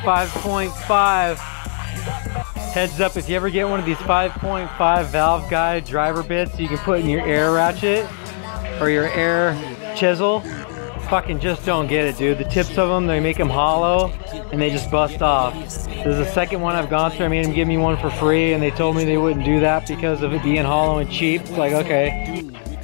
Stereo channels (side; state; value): right; silent; 66 dB below the other